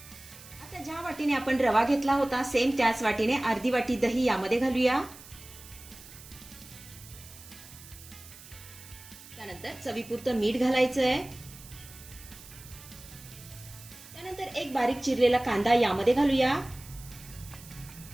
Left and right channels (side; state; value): right; noise; hiss, 18 dB below the sound